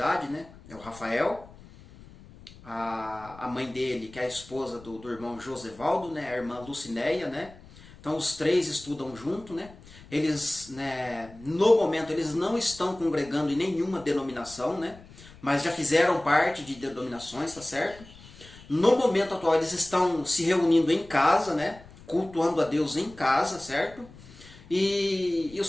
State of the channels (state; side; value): noise; left; rumble, 21 dB below the sound